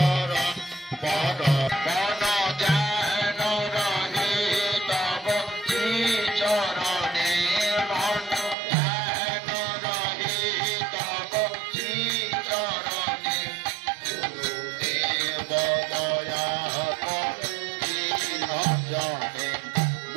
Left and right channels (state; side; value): drops out; left; at 8.6 s